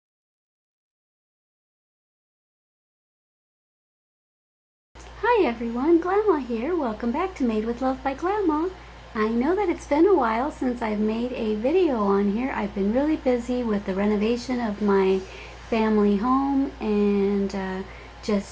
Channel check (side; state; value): both; identical; correlation 1.00